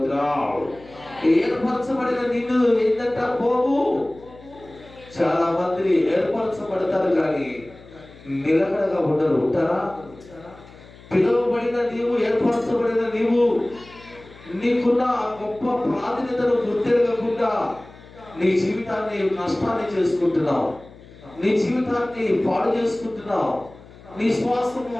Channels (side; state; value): left; noise; hum, 21 dB below the sound